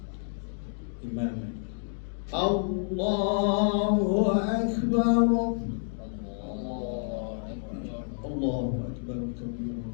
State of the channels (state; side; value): silent; right; digital silence